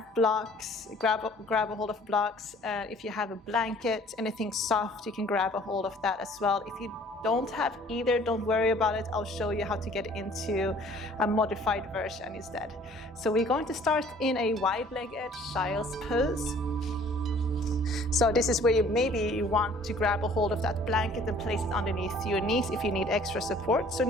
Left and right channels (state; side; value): normal; both; correlation 0.54